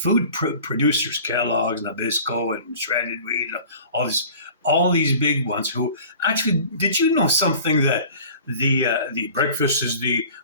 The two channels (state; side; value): inverted; both; correlation -0.44